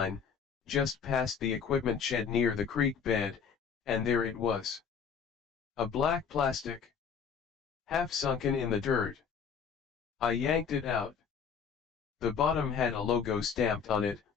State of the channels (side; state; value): right; quieter; 6.6 dB